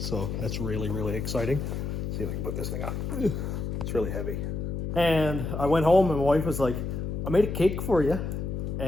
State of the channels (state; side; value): noise; left; hum, 3 dB below the sound